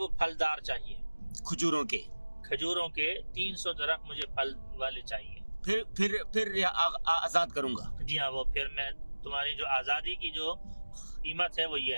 پھلدار چاہیے، کھجوروں کے 300 درخت مجھے پھل والے چاہیے. پھر آزاد کروں گا. جی ہاں، وہ پھر میں تمہاری جو آزادی کی جو قیمت ہے وہ یہ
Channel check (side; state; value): both; inverted; correlation -1.00